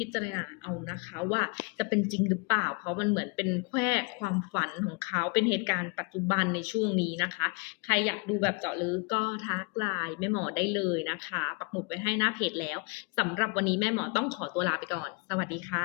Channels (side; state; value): right; quieter; 32.1 dB